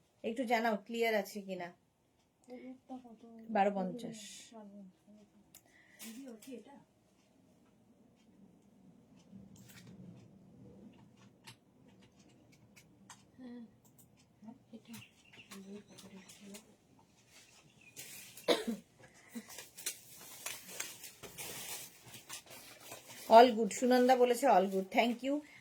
একটু জানাও ক্লিয়ার আছে কিনা। 1250। অল গুড, সুনন্দা বলেছে অল গুড, থ্যাংক ইউ।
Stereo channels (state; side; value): identical; both; correlation 1.00